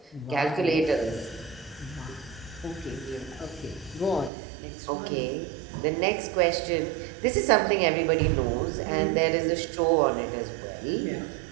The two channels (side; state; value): left; drops out; at 4.3 s